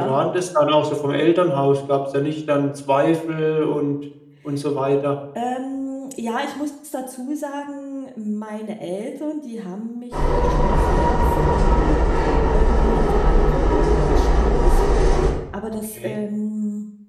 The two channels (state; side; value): identical; both; correlation 1.00